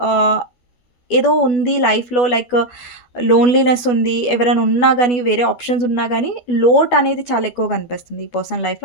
ఏదో ఉంది లైఫ్‌లో లైక్ లోన్‌లీనెస్ ఉంది. ఎవరైనా ఉన్నా గానీ, వేరే ఆప్షన్స్ ఉన్నా గానీ, లోటనేది చాలా ఎక్కువగా కనిపిస్తుంది ఈ పర్సన్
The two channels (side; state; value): right; late; 12 ms